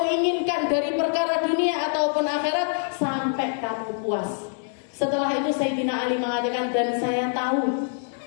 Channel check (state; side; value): silent; right; digital silence